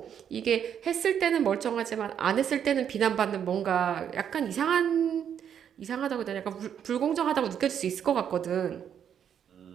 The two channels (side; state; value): left; quieter; 8.7 dB